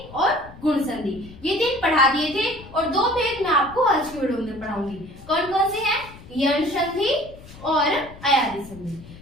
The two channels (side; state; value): left; noise; rumble, 18 dB below the sound